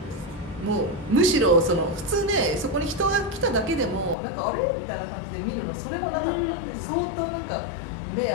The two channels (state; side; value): drops out; right; at 4.2 s